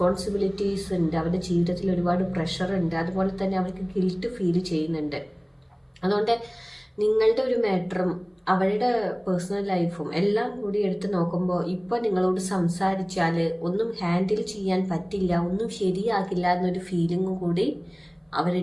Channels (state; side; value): identical; both; correlation 1.00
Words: ഉണ്ട്, അവരുടെ ജീവിതത്തിൽ ഒരുപാട് പ്രഷറുണ്ട്. അതുപോലെ തന്നെ അവർക്ക് ഗിൽറ്റ് ഫീൽ ചെയ്യുന്നുണ്ട്. അതുകൊണ്ട് നിങ്ങളുടെ ഒരു മാറ്ററും അവരുടെ പേഴ്സണൽ ലൈഫും എല്ലാം കൂടി എടുത്ത് നോക്കുമ്പോൾ ഇപ്പോൾ നിങ്ങളോട് സംസാരിച്ചാൽ ഒന്നും ഹാൻഡിൽ ചെയ്യാൻ പറ്റില്ല, ഒന്നും ശരിയാകില്ല എന്നൊരു ഫീലിംഗ് കൂടി